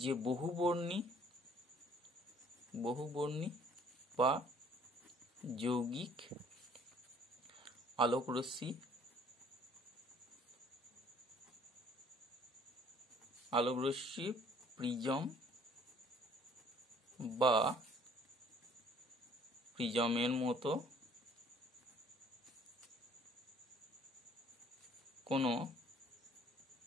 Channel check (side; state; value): both; normal; correlation 0.57